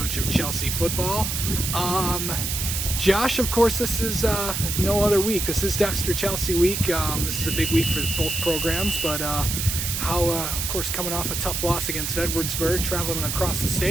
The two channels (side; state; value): right; noise; hiss, 2 dB below the sound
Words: of Chelsea football. Josh, of course, this is no other week. This is Dexter Chelsea week. This is a big week for both programs, but of course, coming off a tough loss against Edwardsburg, traveling across the